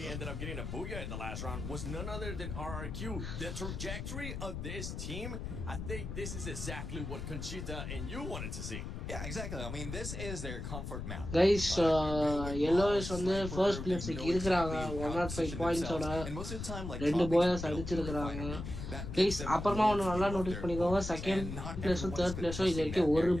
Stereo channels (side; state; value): left; noise; rumble, 6 dB below the sound